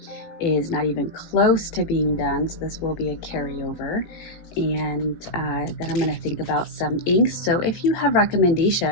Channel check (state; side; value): late; right; 18 ms